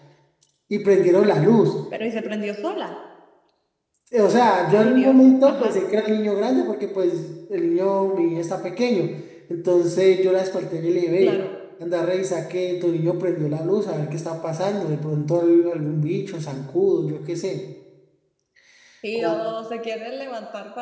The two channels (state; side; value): identical; both; correlation 1.00